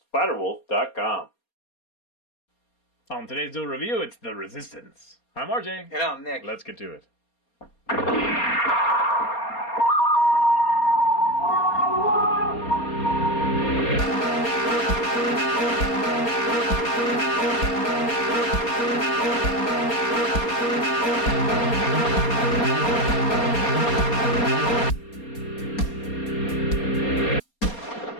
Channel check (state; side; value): late; right; 4.3 ms